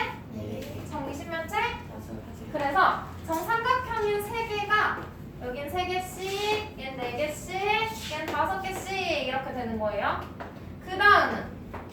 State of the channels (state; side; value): identical; both; correlation 1.00